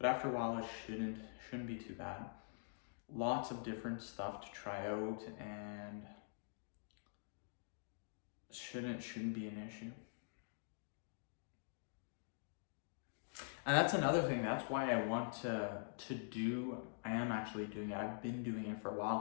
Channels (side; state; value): right; silent; digital silence